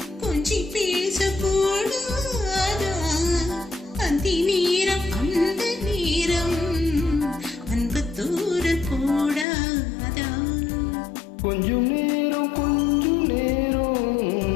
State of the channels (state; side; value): drops out; right; at 9.5 s